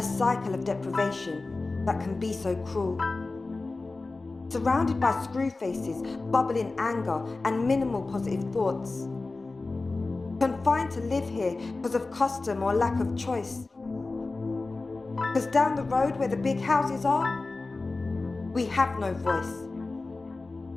cycle of deprivation that can be so cruel. Surrounded by screw faces, bubbling anger, and minimal positive thoughts. Confined to live here because of custom or lack of choice. Because down the road where the big houses are, we have no voice.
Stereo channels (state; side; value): quieter; right; 3.5 dB